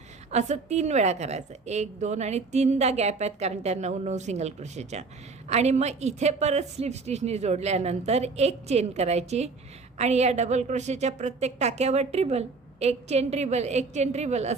असं 3 वेळा करायचं. 1 2 आणि 3दा गॅप आहेत कारण त्या 9 सिंगल क्रोशेच्या. आणि मग इथे परत स्लिप स्टिचनी जोडल्यानंतर एक चेन करायची आणि या डबल क्रोशेच्या प्रत्येक टाक्यावर ट्रिबल, एक चेन ट्रिबल, एक चेन ट्रिबल,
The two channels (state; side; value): quieter; left; 4.2 dB